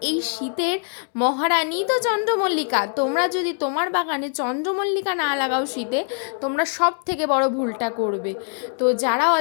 এই শীতের মহারানী তো চন্দ্রমল্লিকা। তোমরা যদি তোমার বাগানে চন্দ্রমল্লিকা না লাগাও শীতে, তোমরা সব থেকে বড় ভুলটা করবে। তো যারা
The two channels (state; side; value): silent; right; 64 dB below the other